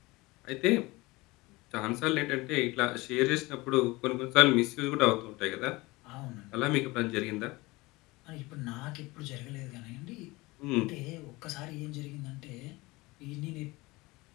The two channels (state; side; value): quieter; right; 22.2 dB